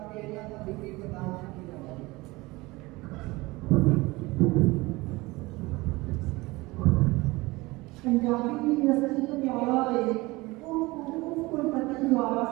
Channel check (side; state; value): left; quieter; 21.9 dB